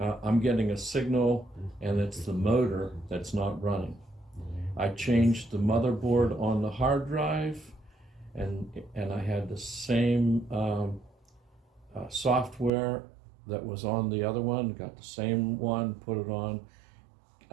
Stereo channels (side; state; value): left; drops out; at 12.7 s